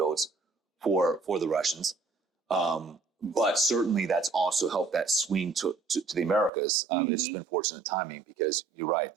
for the Russians. But certainly that's also helped that swing to the Americas. It's been fortunate timing, because you're right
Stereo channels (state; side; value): drops out; left; at 6.5 s